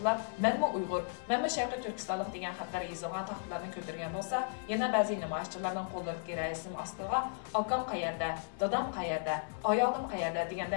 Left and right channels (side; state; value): right; silent; 54 dB below the other